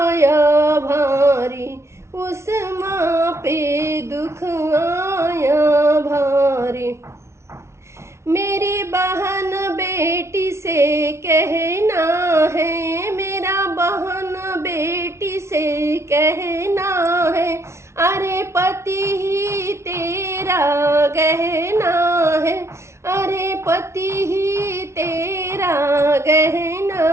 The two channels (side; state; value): left; late; 0.13 ms